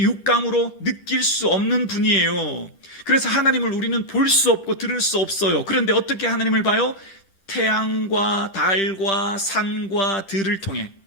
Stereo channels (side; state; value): right; late; 10 ms